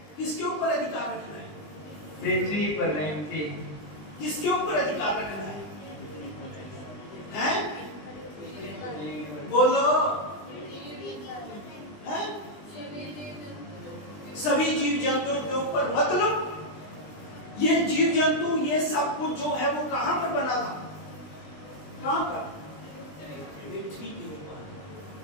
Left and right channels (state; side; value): late; right; 20 ms